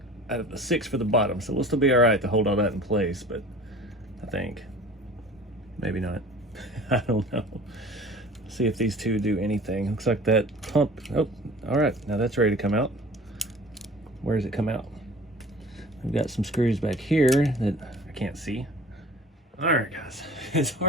out of the 6 for the bottom, so we'll still be all right to hold all that in place, but I think maybe not. I don't know. See if these 2 do anything. Looks like that pump. Oh, all right, now that's ready to come out. Where does it come out? We've got some screws back here that I can't see. All right, guys, it's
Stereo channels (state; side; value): normal; both; correlation 0.44